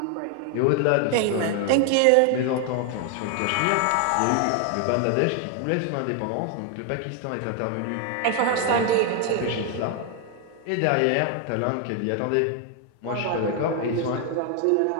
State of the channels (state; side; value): different; both; correlation 0.01